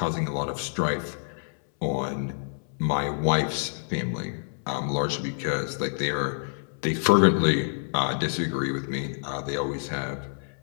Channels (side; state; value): right; silent; 60 dB below the other